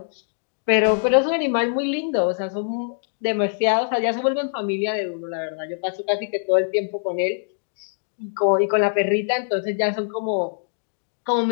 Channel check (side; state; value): right; silent; digital silence